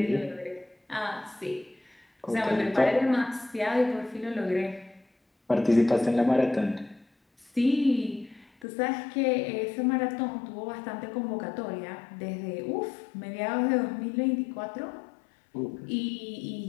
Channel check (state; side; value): drops out; right; at 8.7 s